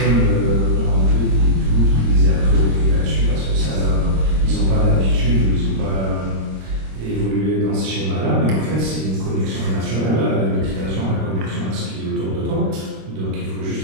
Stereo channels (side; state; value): left; late; 26 ms